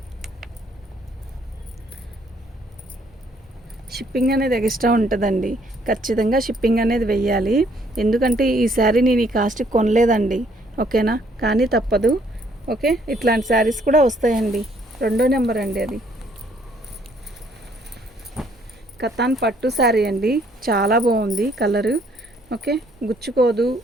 షిప్పింగ్ అనేది ఎక్స్ట్రా ఉంటుందండి, ఖచ్చితంగా షిప్పింగ్ అనేది వెయ్యాలి. ఎందుకంటే ఈ శారీ నేను ఈ కాస్ట్కి కొనలేదండి. ఓకేనా, కానీ తప్పదు. ఓకే, ఇట్లాంటి శారీస్ కూడా వస్తాయండి. రెండో నెంబర్ అండి అది. కతాన్ పట్టు శారీ అండి, చాలా బాగుంది కలరు. ఓకే, గుచ్చుకోదు,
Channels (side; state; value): both; normal; correlation 0.65